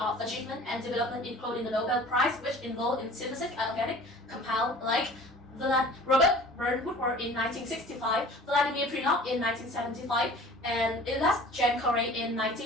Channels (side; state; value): both; normal; correlation 0.45